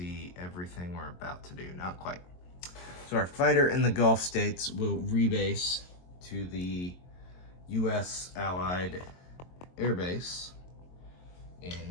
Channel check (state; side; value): late; right; 22 ms